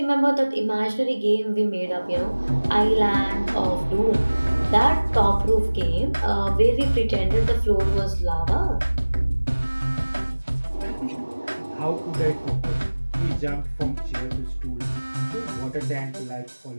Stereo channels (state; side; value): inverted; both; correlation -1.00